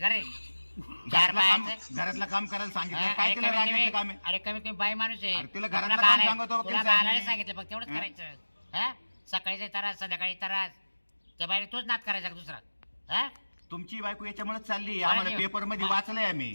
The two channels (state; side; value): inverted; both; correlation -1.00